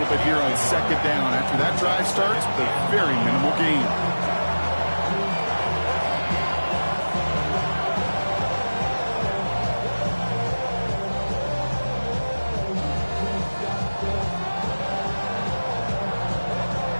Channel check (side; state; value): both; inverted; correlation -1.00